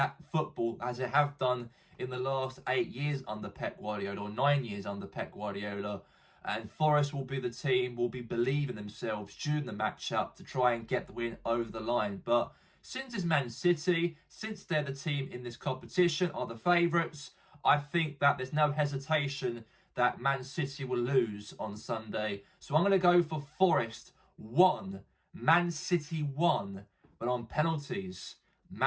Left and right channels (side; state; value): both; identical; correlation 1.00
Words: football as they have done in the last 8 years under Pep Guardiola, or 9 years under Pep Guardiola. And Forest will be the team, will be believing themselves during the matchup to try and get the win over the line. But since it's Man City, since they're the team in this competition, are the favourites, I think that there's no hesitation that Man City will lose on Sunday. So I'm going to go for Forest 1, Man City 1, but on penalties.